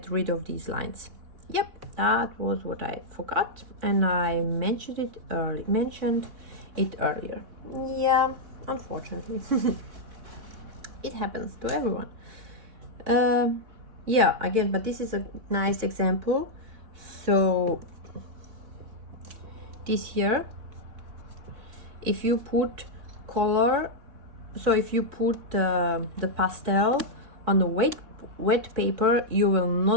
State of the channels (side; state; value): left; late; 3.6 ms